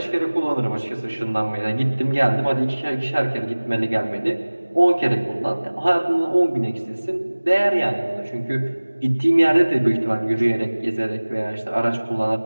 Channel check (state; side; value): inverted; both; correlation -1.00